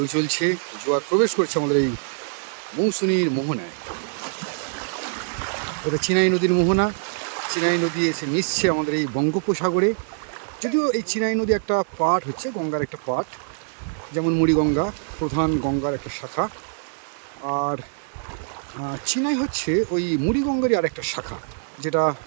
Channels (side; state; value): left; silent; 63 dB below the other